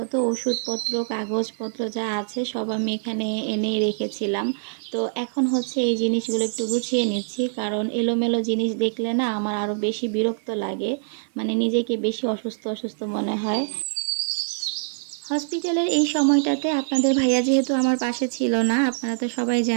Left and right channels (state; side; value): silent; left; 62 dB below the other